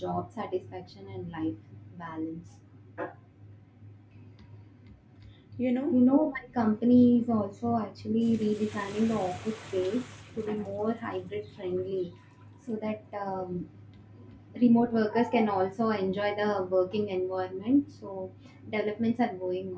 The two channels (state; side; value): identical; both; correlation 1.00